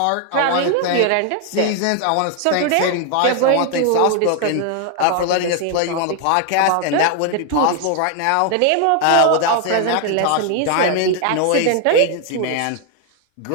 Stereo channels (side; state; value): both; different; correlation 0.00